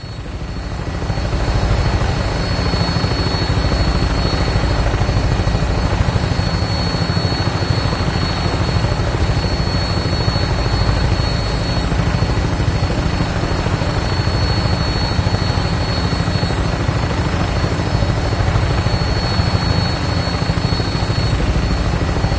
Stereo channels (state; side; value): identical; both; correlation 1.00